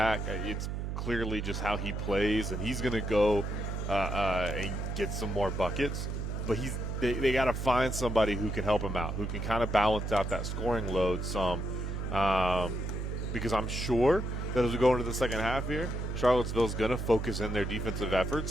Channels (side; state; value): right; noise; hum, 3 dB below the sound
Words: It's clearly just how he plays, and he's going to go and get some more buckets. But they got to find somebody who can help him out, who can kind of balance out that scoring load some. Because I'm sure that as we go into the second half here, Charlottesville's going to focus in their defensive